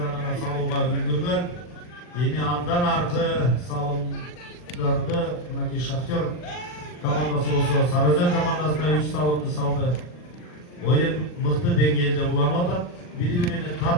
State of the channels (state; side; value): late; right; 40 ms